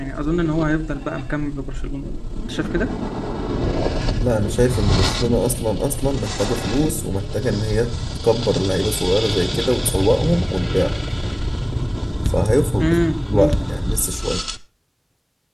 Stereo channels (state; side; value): identical; both; correlation 1.00